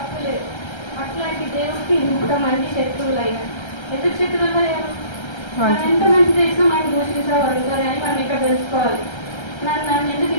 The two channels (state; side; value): late; right; 1.3 ms